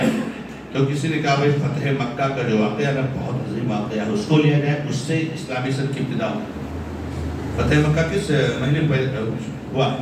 تو کسی نے کہا بھائی فتح مکہ کا جو واقعہ ہے بہت عظیم واقعہ ہے، اس کو لیا جائے، اس سے اسلامی سن کی ابتدا ہو۔ فتح مکہ کس مہینے میں ہوا؟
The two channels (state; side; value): identical; both; correlation 1.00